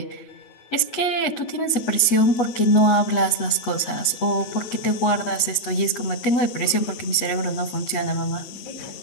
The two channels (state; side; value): late; right; 8.3 ms